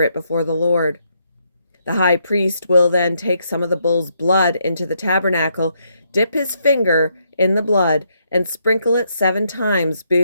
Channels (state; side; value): inverted; both; correlation -0.76